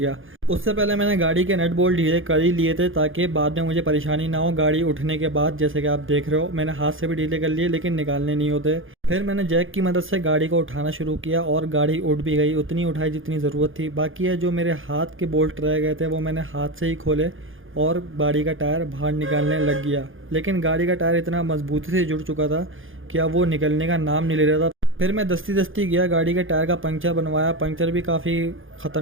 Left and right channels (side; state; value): left; late; 0.58 ms